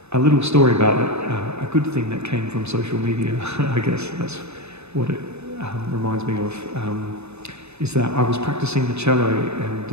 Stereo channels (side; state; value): left; late; 0.80 ms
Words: a little story about it, a good thing that came from social media, I guess that's what it reminds me of, is that I was practicing the cello,